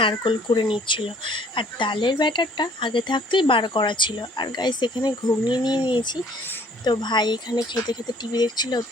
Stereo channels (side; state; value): both; normal; correlation 0.58